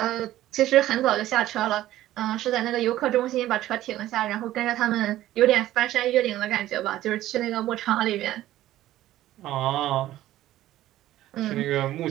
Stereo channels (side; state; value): left; quieter; 14.3 dB